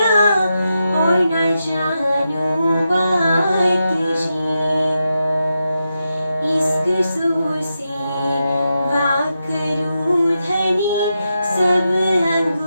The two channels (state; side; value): inverted; both; correlation -0.87